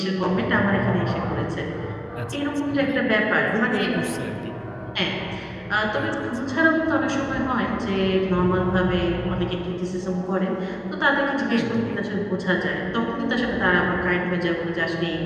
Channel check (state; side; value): identical; both; correlation 1.00